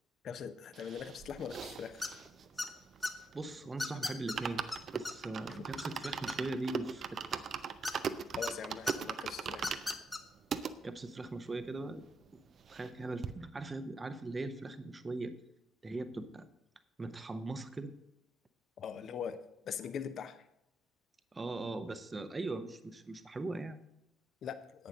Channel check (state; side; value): normal; both; correlation 0.80